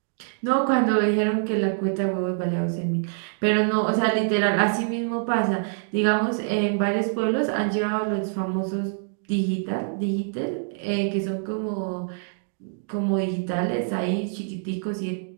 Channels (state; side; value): silent; left; digital silence